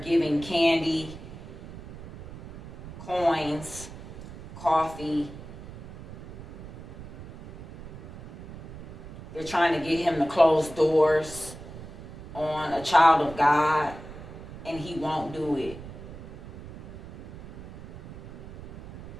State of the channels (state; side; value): noise; right; rumble, 14 dB below the sound